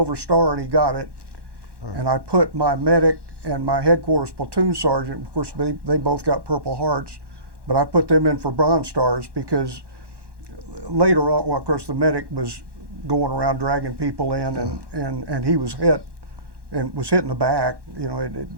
Star, and he got it. Right. And I put my medic and my headquarters platoon sergeant, of course they both got Purple Hearts, but I put them in for Bronze Stars because later on, well, of course the medic was going around dragging people in, and he was hit and was hit in the back. You know,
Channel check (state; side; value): late; left; 1.1 ms